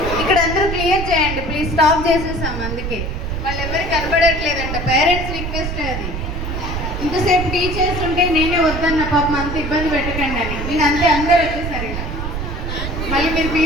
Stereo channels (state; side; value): noise; right; rumble, 4 dB below the sound